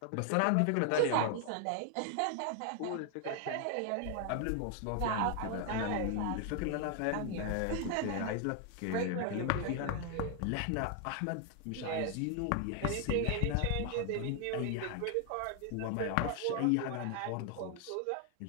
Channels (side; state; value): both; different; correlation 0.00